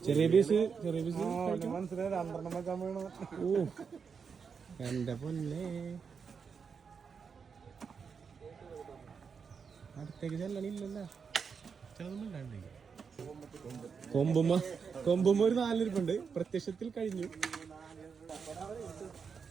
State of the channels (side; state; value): left; quieter; 6.0 dB